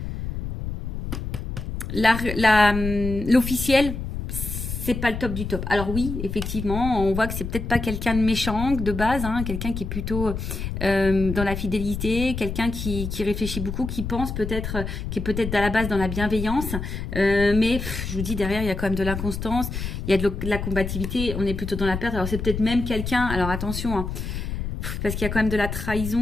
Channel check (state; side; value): noise; left; rumble, 5 dB below the sound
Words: L'officiel, c'est pas le top du top. Alors oui, effectivement, on voit que c'est peut-être pas quelqu'un de méchant de base, hein, quelqu'un qui est plutôt dans la fidélité, quelqu'un qui réfléchit beaucoup, qui pense peut-être, qui est peut-être à la base dans la bienveillance, mais je vous dis derrière il y a quand même de l'inconstance, il y a de la combativité, on est plutôt dans la perte. Alors c'est peut-être même quelqu'un, alors attention, hein, parce qu'il y a quand même de la